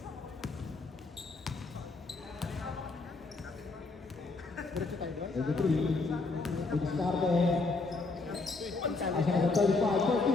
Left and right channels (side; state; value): right; quieter; 3.7 dB